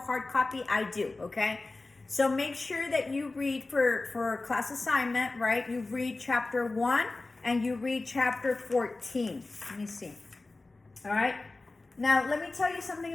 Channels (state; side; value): quieter; right; 3.3 dB